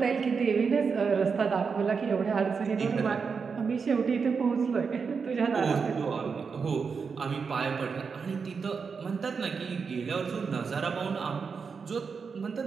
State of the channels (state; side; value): quieter; left; 5.5 dB